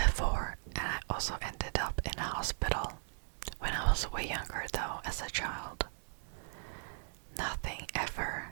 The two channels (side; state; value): left; silent; digital silence